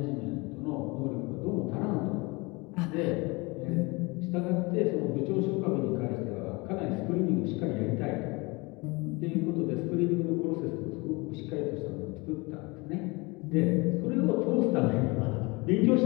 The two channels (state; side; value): quieter; right; 26.0 dB